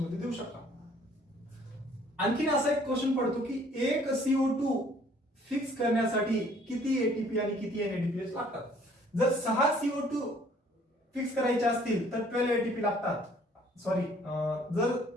मध्ये देऊ शकता. आणखीन असा एक क्वेश्चन पडतो की एक CO2 फिक्स करण्यासाठी किती एटीपी आणि किती NADPH लागतात. जर 6 CO2 फिक्स करायचे असतील तर 12 एटीपी लागतात. सॉरी, जर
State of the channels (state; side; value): normal; both; correlation 0.59